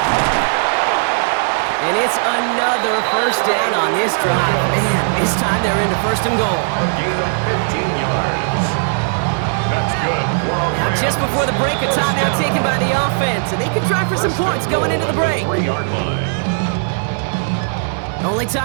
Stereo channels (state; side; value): silent; left; digital silence